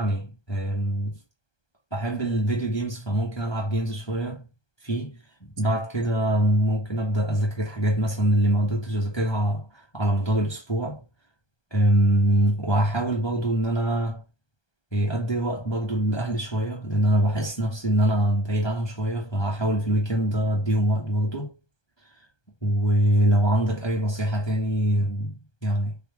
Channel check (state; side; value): late; right; 1.2 ms